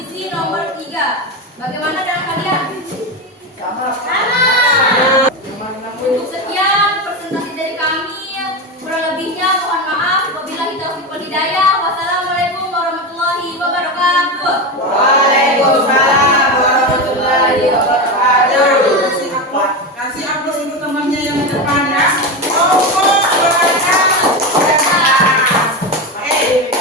nomor 3. Bagaimana dengan kalian? Sama. Untuk sekian presentasi dari kami, kurang lebihnya mohon maaf. Wabillahi taufiq wal hidayah. Wassalamualaikum warahmatullahi wabarakatuh. Waalaikumsalam warahmatullahi wabarakatuh. Kasih aplaus untuk temannya yang di depan ya.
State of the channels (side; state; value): both; normal; correlation 0.17